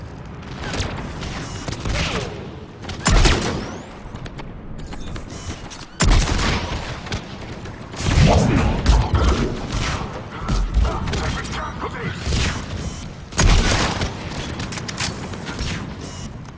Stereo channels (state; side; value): identical; both; correlation 1.00